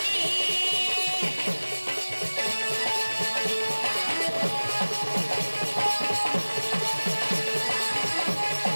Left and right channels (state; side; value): inverted; both; correlation -1.00